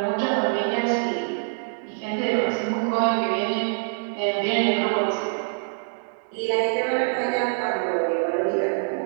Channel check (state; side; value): silent; left; digital silence